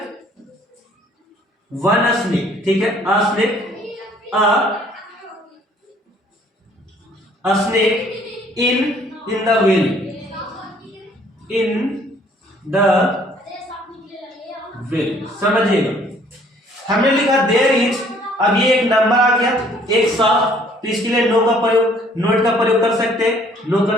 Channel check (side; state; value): both; normal; correlation 0.59